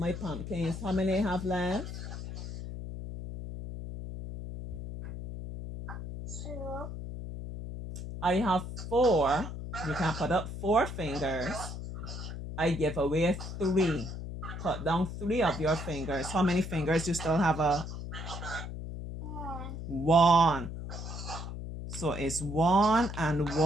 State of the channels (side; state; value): left; noise; hum, 8 dB below the sound